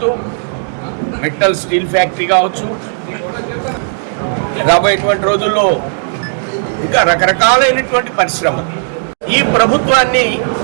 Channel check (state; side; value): silent; left; digital silence